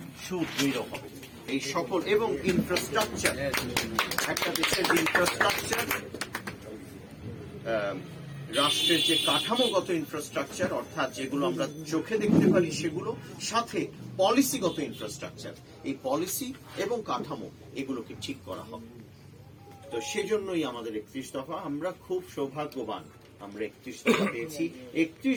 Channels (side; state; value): both; identical; correlation 1.00